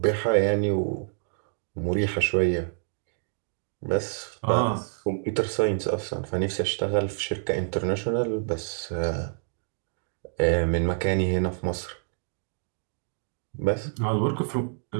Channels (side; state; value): left; silent; digital silence